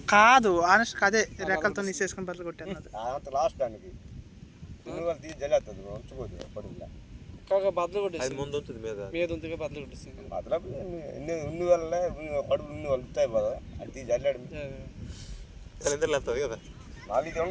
కాదు ఆనెస్ట్ అదే రెక్కలతో నీసేసుకుని బదులు కొట్టాను అంత లాస్ట్ దానికి తీసి జల్లేస్తుంది ఉంచుకోదు పడుగులా కాక బదులు కొట్టేసి ముందు ఉంటుంది మీద ఉంటుంది బదులు కొట్టేస్తుంది బదులు ఉన్ని వల్ల కడుపు ఉన్ని వాళ్ళు ఉంటాయి కదా అది తీసి జల్లాడు వెళ్తుంది కదా నాకు ఇది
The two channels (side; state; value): both; identical; correlation 1.00